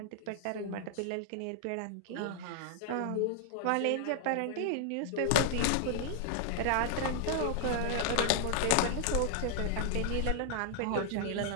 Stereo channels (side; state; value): both; different; correlation 0.00